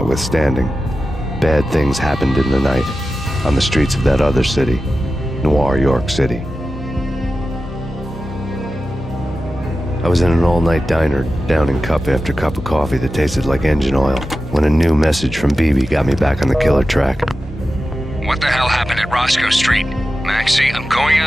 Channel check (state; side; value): normal; both; correlation 0.93